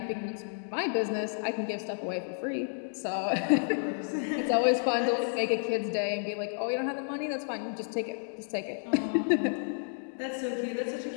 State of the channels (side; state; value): right; silent; digital silence